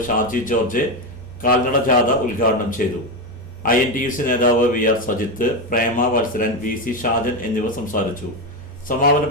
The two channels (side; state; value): both; normal; correlation 0.12